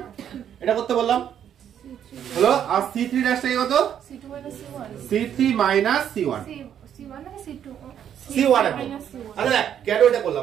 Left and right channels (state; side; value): quieter; left; 9.4 dB